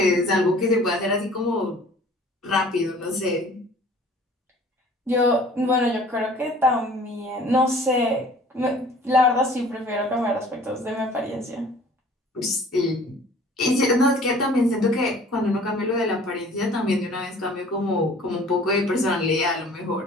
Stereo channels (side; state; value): both; normal; correlation 0.50